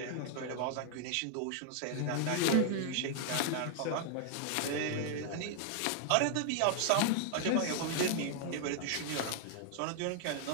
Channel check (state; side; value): different; both; correlation 0.00